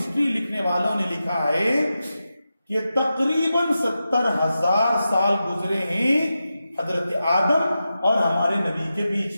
لکھنے والوں نے لکھا ہے کہ تقریباً 70,000 سال گزرے ہیں حضرت آدم اور ہمارے نبی کے بیچ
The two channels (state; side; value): inverted; both; correlation -0.91